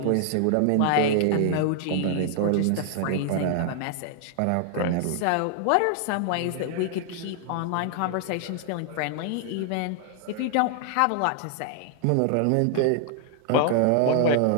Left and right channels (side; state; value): both; different; correlation 0.00